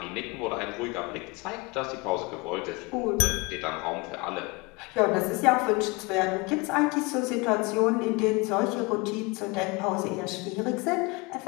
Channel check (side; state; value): right; quieter; 26.4 dB